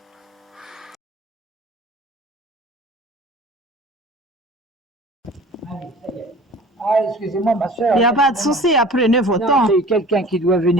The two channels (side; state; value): both; normal; correlation 0.44